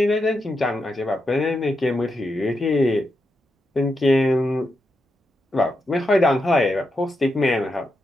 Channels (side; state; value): both; normal; correlation 0.85